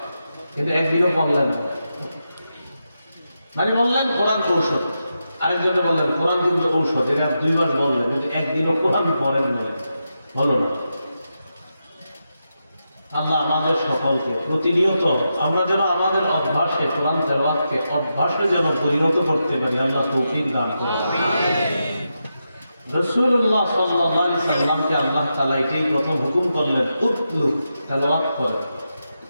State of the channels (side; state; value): both; inverted; correlation -0.87